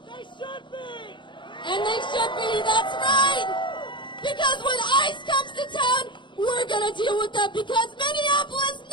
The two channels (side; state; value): right; late; 0.23 ms